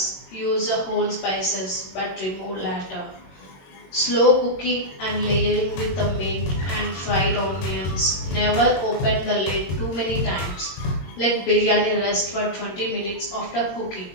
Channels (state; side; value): late; right; 22 ms